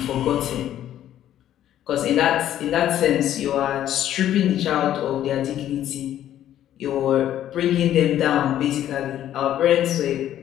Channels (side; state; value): right; quieter; 11.7 dB